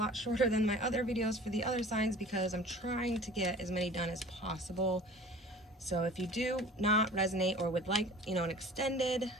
shorter than my other videos for the other signs, because I'm trying to get as many done as possible. So if you do not resonate or would like, you know, an extended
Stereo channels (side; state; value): both; normal; correlation 0.44